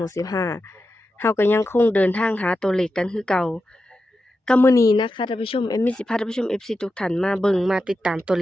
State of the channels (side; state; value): both; normal; correlation 0.90